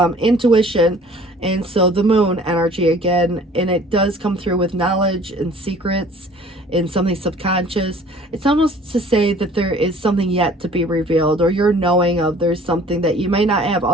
intuition, and so the moon energy again, and it does come through with knowledge and secrets and something subconscious. It's almost to say that there is something yet to be revealed, or you're knowing of there's something that you may not have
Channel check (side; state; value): both; normal; correlation 0.51